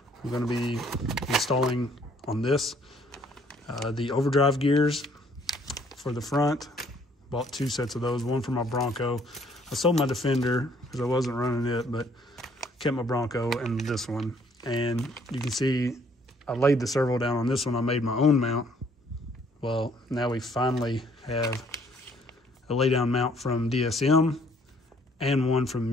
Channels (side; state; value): both; normal; correlation 0.63